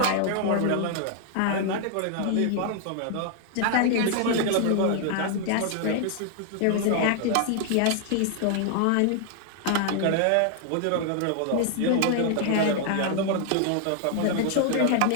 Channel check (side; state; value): both; different; correlation 0.00